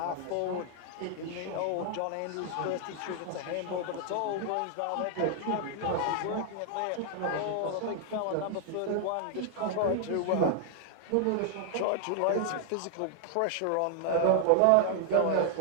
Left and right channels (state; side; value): different; both; correlation 0.00